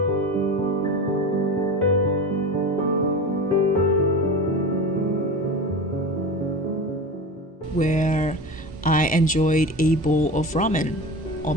Where I enjoyed a bowl of ramen all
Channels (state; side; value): normal; both; correlation 0.29